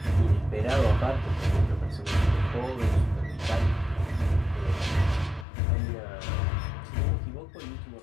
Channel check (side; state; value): right; drops out; at 5.5 s